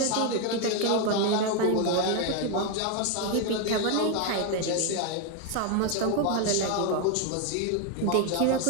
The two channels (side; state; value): both; different; correlation 0.01